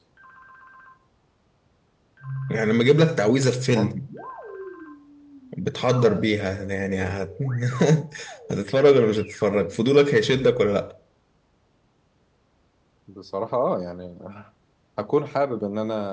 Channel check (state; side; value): identical; both; correlation 1.00